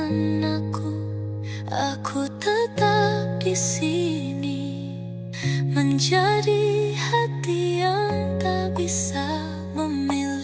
aku tetap di sini, menjadi hati yang tak bisa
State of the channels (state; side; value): identical; both; correlation 1.00